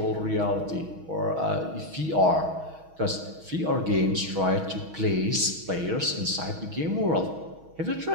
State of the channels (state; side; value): late; left; 6.3 ms